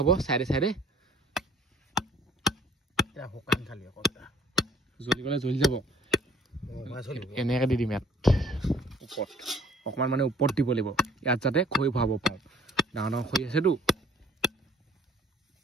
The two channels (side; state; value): both; normal; correlation 0.55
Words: চাইডে চাইডে শুকান খালি অকল জ্বলি গ'লে জ্বলি যাব এনেকৈ দি দিম ইয়াত ওপৰত অকণমান মানে ওপৰত দিব লাগিব ইয়াত যাতে খৈ ভৰাব পাৰোঁ ডাঙৰ ডাঙৰ খৈ আছেতো